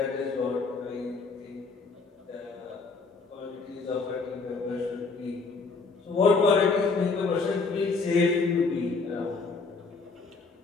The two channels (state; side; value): quieter; right; 4.3 dB